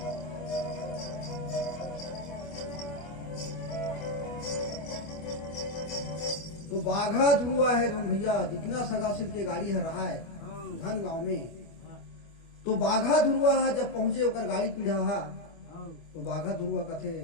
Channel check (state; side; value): late; right; 25 ms